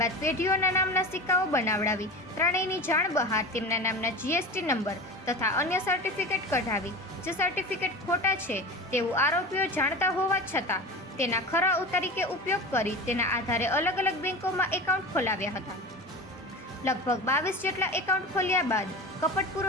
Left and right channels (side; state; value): both; normal; correlation 0.31